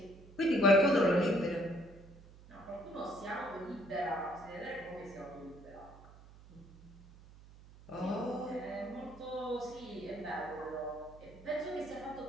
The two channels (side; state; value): right; noise; hum, 20 dB below the sound